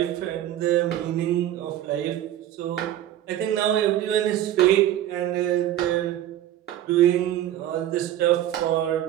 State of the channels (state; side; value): quieter; left; 12.4 dB